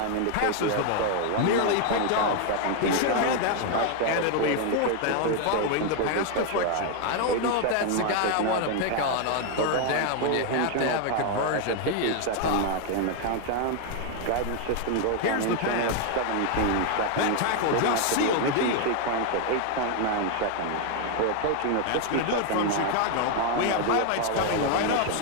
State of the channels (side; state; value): both; different; correlation 0.01